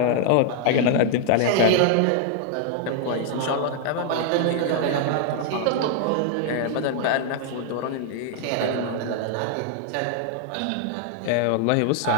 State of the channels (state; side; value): different; both; correlation 0.00